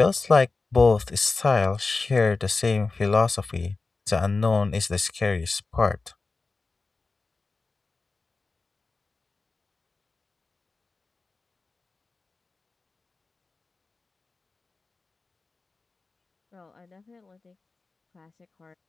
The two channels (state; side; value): quieter; right; 3.8 dB